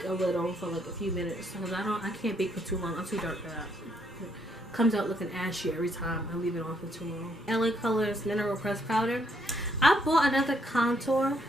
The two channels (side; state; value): both; normal; correlation 0.72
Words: a little for like a few minutes because I can't bake for too long. I'm too dark for that. It comes out looking ashy every time I leave it on for too long. LA Colors Mineral Press Powder. I bought another contour